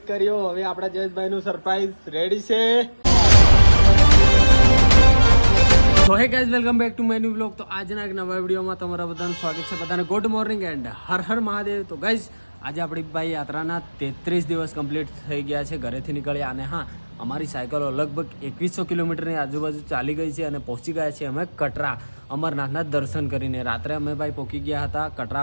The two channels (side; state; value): both; inverted; correlation -1.00